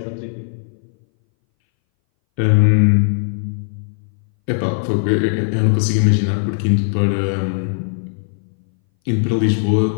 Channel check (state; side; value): silent; right; 62 dB below the other